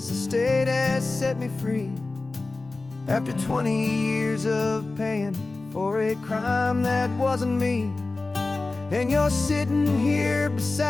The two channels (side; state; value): right; quieter; 3.4 dB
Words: the state has set me free, after 20 years of paying for a crime that wasn't me. And you're sitting here